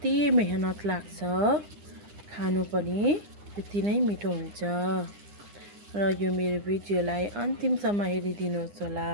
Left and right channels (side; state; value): left; late; 9.8 ms